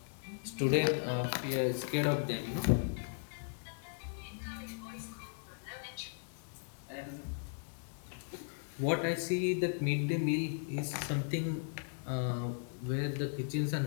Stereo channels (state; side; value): silent; right; digital silence